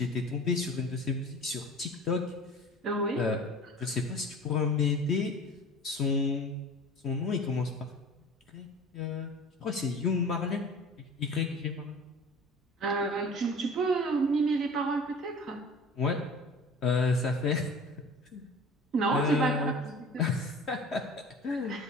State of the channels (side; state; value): both; normal; correlation 0.41